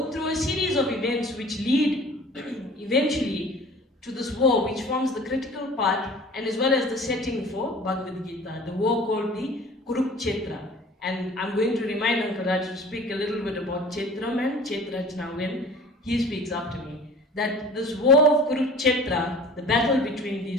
through a series of events which lead eventually to this war, which forms the critical part and as well as the setting for Bhagavad Gita, the war called the Kurukshetra. And I'm going to remind Uncle Raj to speak a little bit about Kshetram and Kshetrajna when he speaks after me. That this war of Kurukshetra, the battle between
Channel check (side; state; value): both; normal; correlation 0.44